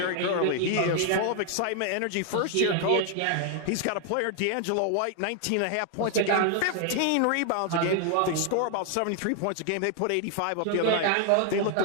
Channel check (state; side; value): different; both; correlation 0.00